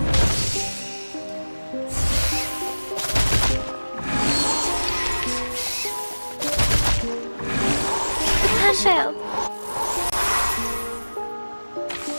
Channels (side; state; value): both; inverted; correlation -1.00